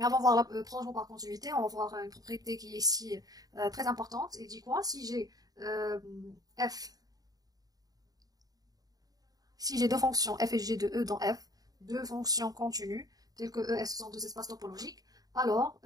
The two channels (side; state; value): left; late; 0.18 ms